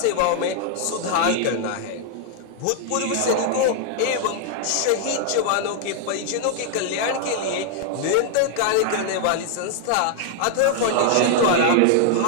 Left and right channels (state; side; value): different; both; correlation 0.00